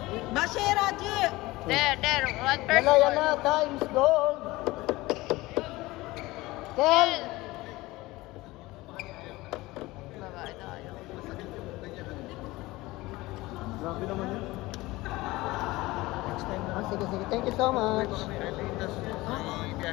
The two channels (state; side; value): quieter; right; 19.9 dB